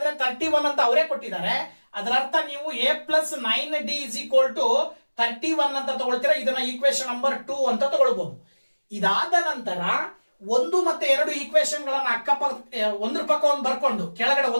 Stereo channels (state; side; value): inverted; both; correlation -1.00